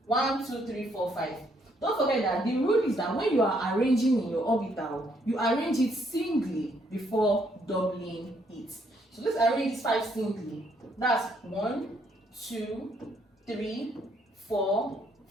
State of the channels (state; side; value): normal; both; correlation 0.70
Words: 1, 2, 3, 4, 5. Don't forget that the rule is that when you are arranging in your orbital, you arrange it singly before doubling it. So let's arrange this 5 singly. That's 1, 2, 3, 4,